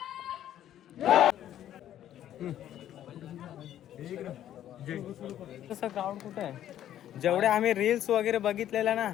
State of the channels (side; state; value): right; quieter; 11.5 dB